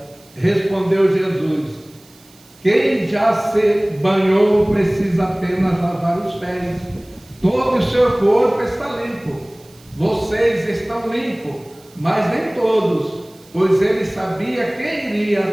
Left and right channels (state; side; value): noise; right; hiss, 27 dB below the sound